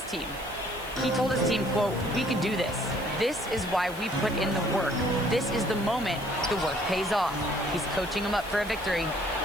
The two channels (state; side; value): noise; right; hiss, 18 dB below the sound